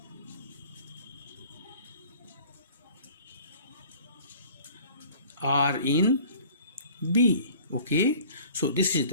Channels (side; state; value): both; inverted; correlation -0.48